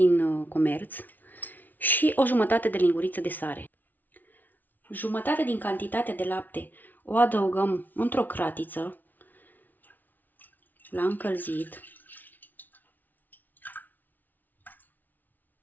comerț, și o jumătate de linguriță de sare. Jumătate din cantitatea de lapte o adăugăm într-o cratiță la încălzit.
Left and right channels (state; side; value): late; right; 0.083 ms